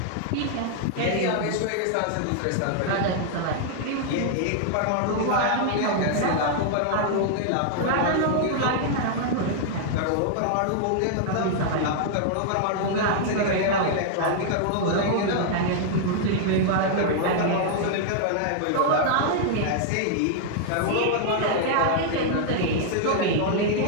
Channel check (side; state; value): both; different; correlation -0.01